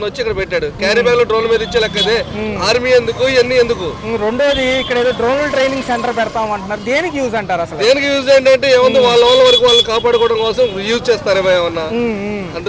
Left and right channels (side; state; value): both; identical; correlation 1.00